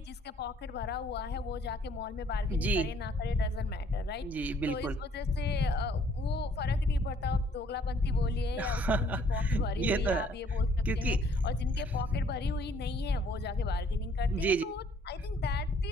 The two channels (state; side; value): normal; both; correlation 0.61